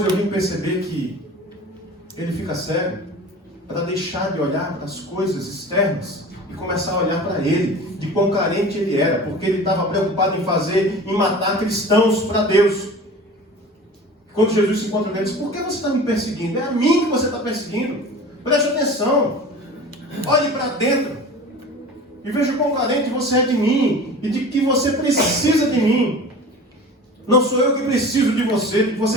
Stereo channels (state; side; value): normal; both; correlation 0.38